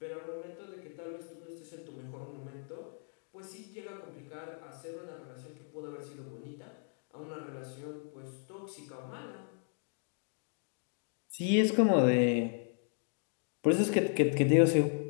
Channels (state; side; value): silent; right; 54 dB below the other